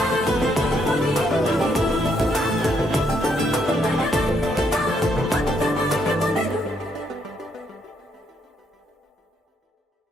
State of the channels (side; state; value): both; normal; correlation 0.74